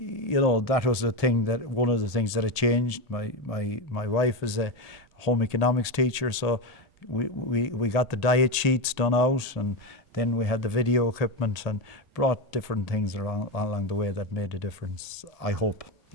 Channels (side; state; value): right; late; 1.8 ms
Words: was one of the things that had changed. My wife is a home economics teacher, so we got the diet sheets done out, and then we had the video equipment and brought different things along the way that made a difference, I hope.